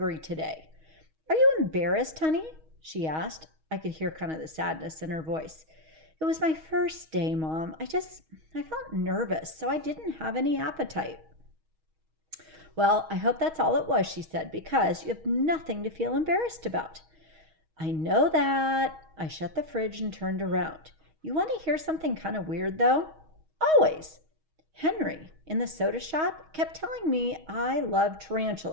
today. Are you embarrassed, honey? She asked. I could hear kind of the sadness in her voice. It was my first day, Mom. I felt nervous, so I didn't have any appetite. Well, I hope that's all it was, she said, because you have nothing to feel embarrassed about. I know that. I shut the fridge and turned around. You want to hear something kind of weird, though? Always. Henry, in the soda shop, kept telling me I love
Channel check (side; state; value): left; late; 6.3 ms